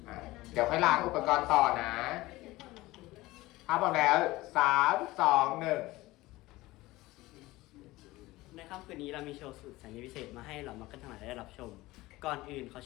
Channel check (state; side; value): quieter; right; 19.0 dB